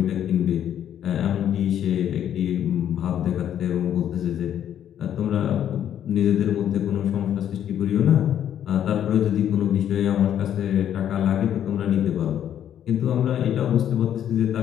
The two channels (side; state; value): right; quieter; 10.1 dB